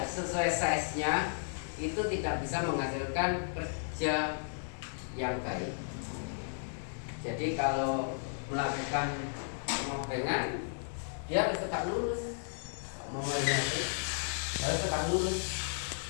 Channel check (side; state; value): right; silent; digital silence